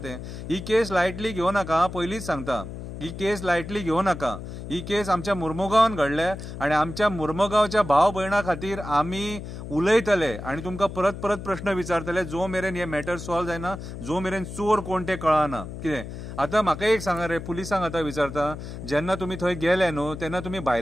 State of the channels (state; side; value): noise; left; hum, 9 dB below the sound